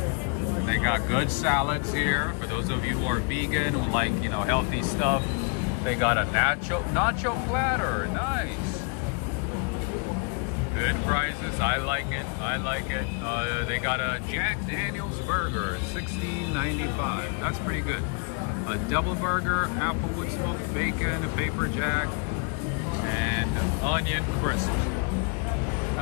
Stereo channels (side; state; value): right; quieter; 34.7 dB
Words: They got good salads here. For those of you who are vegan, who like, you know, healthy stuff, they got a nacho platter. Nice. Good prices. I like it. I like it. They got a Jack Daniel's burger, $16.95. That's pretty good. A double burger, applewood smoked bacon, a paper jack, and onion crisp.